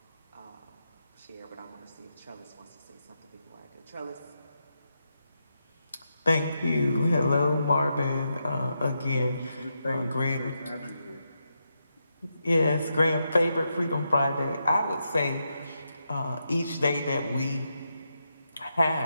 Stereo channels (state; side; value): inverted; both; correlation -0.84